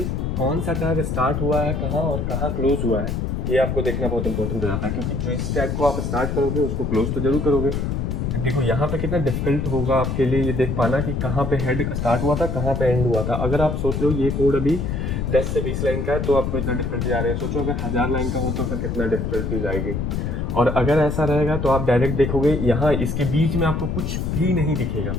कौन सा टैग स्टार्ट हुआ है कहाँ और कहाँ क्लोज हुआ है, ये आपको देखना बहुत इंपॉर्टेंट हो जाता है, क्योंकि जो इस टैग को आप स्टार्ट करोगे उसको क्लोज तो जरूर करोगे। देखो यहाँ पे कितना डिफिकल्ट होगा आपके लिए ये देख पाना कि कहाँ पे हेड स्टार्ट हुआ था, कहाँ पे एंड हुआ था। अगर आप सोच लो ये कोड अभी 10 से 20 लाइन का है तो आपको इतना डिफिकल्टी आ रही है, सोचो अगर 1000 लाइन का हो तो फिर कितना डिफिकल्टीज आएगी। और अगर ऐसा रहेगा तो आप डायरेक्ट देखोगे यहाँ इसके बीच में आपको कुछ भी नहीं दिखेगा,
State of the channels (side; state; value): left; noise; rumble, 1 dB below the sound